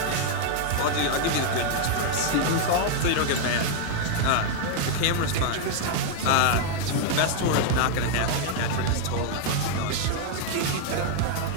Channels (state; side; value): different; both; correlation 0.00